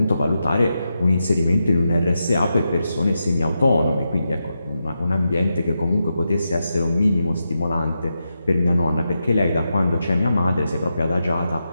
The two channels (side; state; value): both; inverted; correlation -0.87